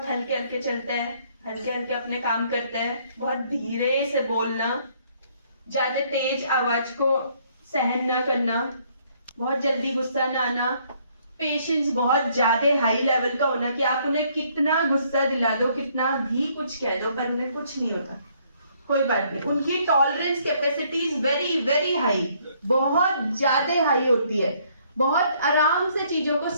हल्के हल्के चलता है, हल्के हल्के अपने काम करता है, बहुत धीरे से बोलना, ज्यादा तेज आवाज को सहन न करना, बहुत जल्दी गुस्सा न आना, पेशेंस बहुत ज्यादा हाई लेवल का होना कि आप उन्हें कितना गुस्सा दिला दो, कितना भी कुछ कह दो, पर उन्हें कुछ नहीं होता, कोई बात नहीं। उनकी tolerance capacity is very very high, बहुत ज्यादा हाई होती है, बहुत आराम से चीजों को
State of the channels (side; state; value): both; inverted; correlation -0.66